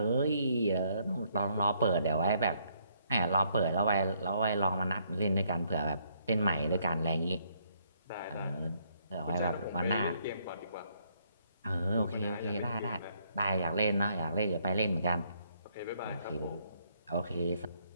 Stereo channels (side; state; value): both; inverted; correlation -0.70